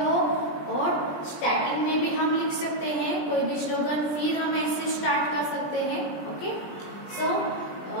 और स्टार्टिंग में भी हम लिख सकते हैं कोई भी स्लोगन, फिर हम ऐसे स्टार्ट कर सकते हैं। ओके, सो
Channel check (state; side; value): late; right; 20 ms